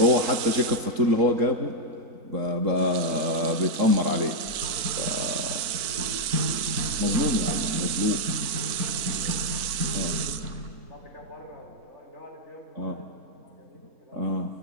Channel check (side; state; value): left; late; 4.4 ms